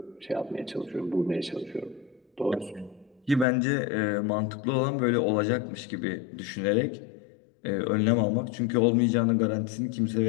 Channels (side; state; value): right; drops out; at 3.5 s